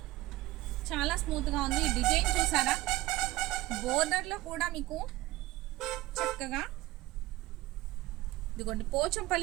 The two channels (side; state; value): left; quieter; 17.9 dB